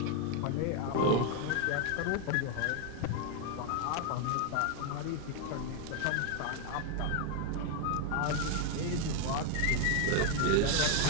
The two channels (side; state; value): both; different; correlation 0.01